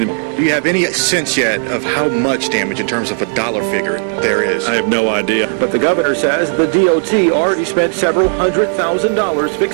Do you have any sense yet of how much damage in terms of a dollar figure there is? I have no idea. But the governor says the DOT already spent several $100,000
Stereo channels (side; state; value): left; silent; digital silence